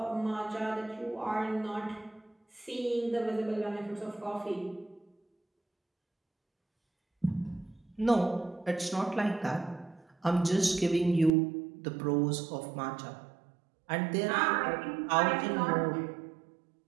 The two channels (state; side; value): drops out; left; at 11.3 s